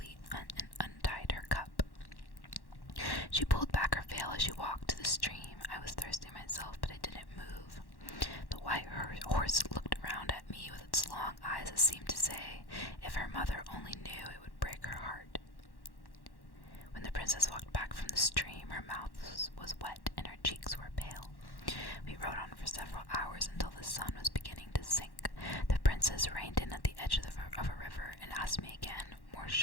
and untied her cup. She pulled back her veil as she walked to the stream. I was thirsty myself, but I didn't move. The white horse looked around at me with its long eyes that seemed to say, if her mother only knew, it would break her heart. When the princess walked back from the stream, her mouth was wet and her cheeks were pale. We rode on for several hours until the sun was beginning to sink. The princess reined in at the edge of a river and asked me again, more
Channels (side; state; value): right; late; 1.1 ms